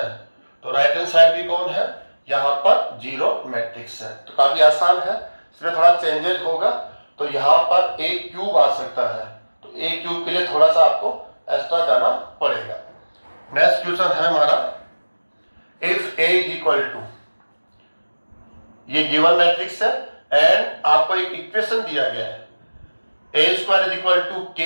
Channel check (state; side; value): inverted; both; correlation -1.00